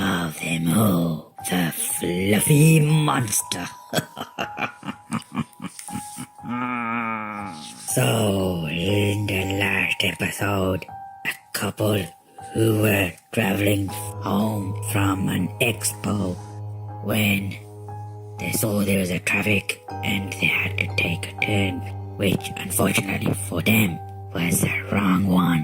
them all, the Fluffy Monster. So, in the last episode, a couple who were traveling home from an expo when they saw there was a traffic and they had to take a turn, which unfortunately for them was the wrong one.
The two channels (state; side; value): identical; both; correlation 1.00